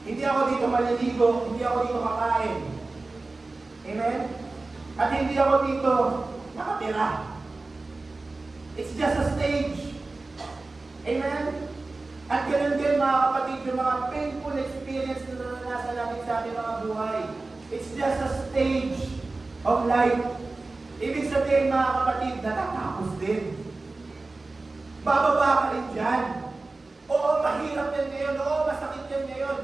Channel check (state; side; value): quieter; left; 3.4 dB